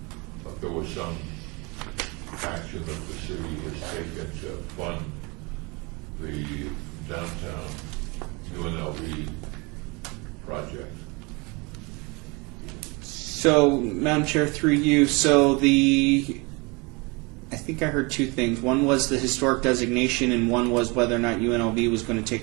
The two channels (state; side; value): quieter; left; 27.8 dB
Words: If there was some action that the city has taken to fund the downtown UNLV project. So, Madam Chair, through you, I think I heard two things. One was the historic designation, and one was whether or not UNLV was going to